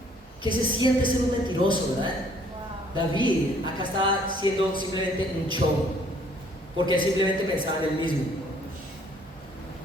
¿Qué se siente ser un mentiroso, verdad? David acá está siendo simplemente un show, porque él simplemente pensaba en él mismo.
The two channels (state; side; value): normal; both; correlation 0.61